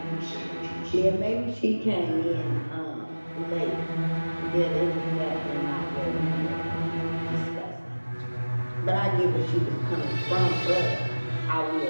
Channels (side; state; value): both; inverted; correlation -1.00